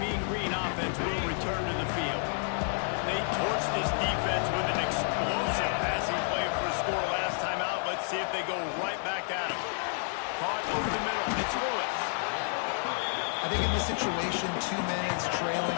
Green offense will return to the field. They torched this defense with an explosive passing play for a score last time out. Let's see if they go right back at him. Caught over the middle. It's Lewis. I think in this situation, 2 minutes,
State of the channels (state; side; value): silent; right; 58 dB below the other